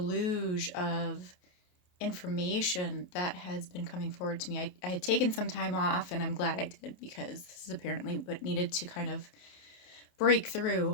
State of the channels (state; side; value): late; right; 28 ms